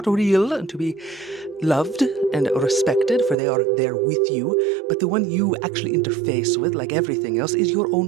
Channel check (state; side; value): drops out; left; at 3.4 s